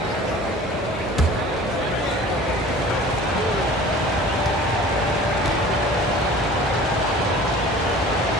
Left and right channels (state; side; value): normal; both; correlation 0.44